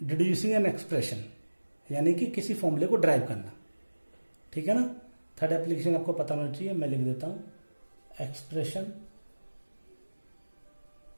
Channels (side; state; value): both; inverted; correlation -1.00